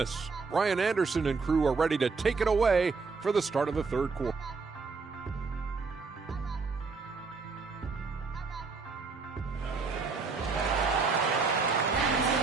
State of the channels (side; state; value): left; quieter; 4.5 dB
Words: Ryan Anderson and crew are ready to take it away for the start of the third quarter.